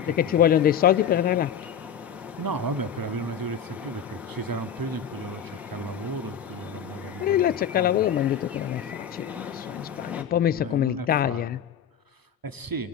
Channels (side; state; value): right; quieter; 7.9 dB